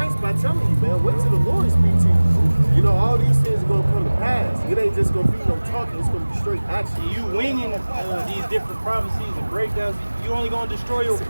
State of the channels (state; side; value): inverted; both; correlation -1.00